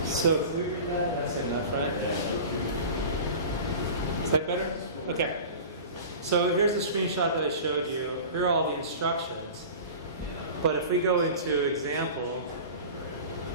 So if we read that, that's good enough, right? Is that better? Okay. So here's the screenshot that I showed you. Here are all the instructions. But if we go into example,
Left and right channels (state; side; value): inverted; both; correlation -0.36